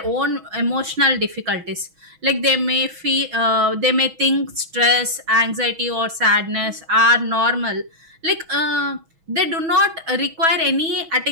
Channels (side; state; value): left; late; 6.2 ms